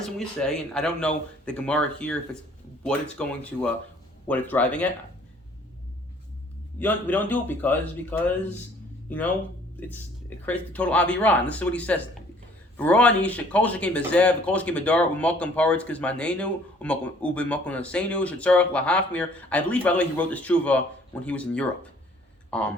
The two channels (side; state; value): both; normal; correlation 0.57